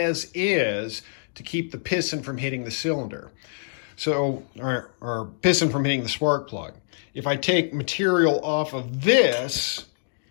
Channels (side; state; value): right; silent; digital silence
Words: is to keep the piston from hitting the cylinder. So, or piston from hitting the spark plug. If I take material off of this,